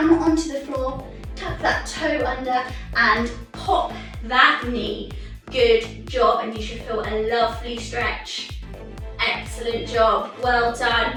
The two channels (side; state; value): both; identical; correlation 1.00